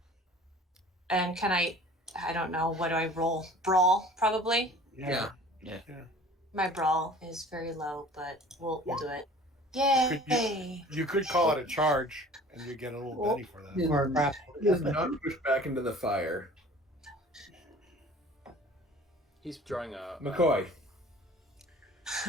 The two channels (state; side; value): normal; both; correlation 0.46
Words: And can I don't know. What do I roll? Brawl, probably. Yeah. My brawl is very low, but we'll do it. Yay! You could call it a charge, and you get a little penny for that. Or crap. He is not pushed back into the fire. He's drawing a McCoy.